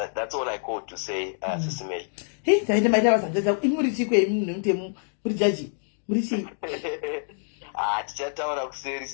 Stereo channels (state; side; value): silent; right; digital silence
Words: all I called to say, Sisimeli. Hey, taita maita vasanjaza imurichi kwe mutemu muri jaji murichi. Tichataura kuseri